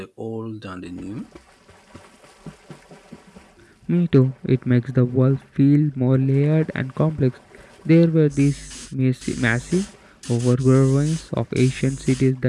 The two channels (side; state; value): both; identical; correlation 1.00